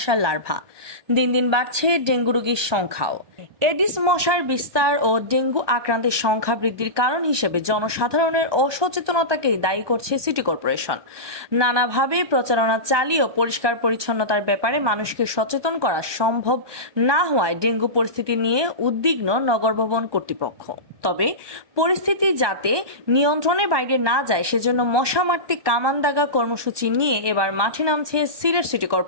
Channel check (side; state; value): left; late; 1.2 ms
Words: লার্ভা। দিন দিন বাড়ছে ডেঙ্গু রোগীর সংখ্যাও। এডিস মশার বিস্তার ও ডেঙ্গু আক্রান্তের সংখ্যা বৃদ্ধির কারণ হিসেবে জনসাধারণের অসচেতনতাকেই দায়ী করছে সিটি কর্পোরেশন। নানাভাবে প্রচারণা চালিয়েও পরিষ্কার পরিচ্ছন্নতার ব্যাপারে মানুষকে সচেতন করা সম্ভব না হওয়ায় ডেঙ্গু পরিস্থিতি নিয়ে উদ্বিগ্ন নগর ভবন কর্তৃপক্ষ। তবে পরিস্থিতি যাতে নিয়ন্ত্রণের বাইরে না যায় সেজন্য মশা মারতে কামান দাগা কর্মসূচি নিয়ে এবার মাঠে নামছে সিলেট সিটি